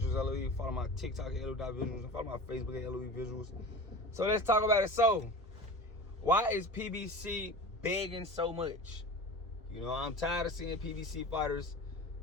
LOE. Follow my TikTok at LOE.Visuals. And follow my Facebook at LOE Visuals. So let's talk about it. So, why is PBC begging so much? You know, I'm tired of seeing PBC fighters,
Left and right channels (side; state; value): both; normal; correlation 0.34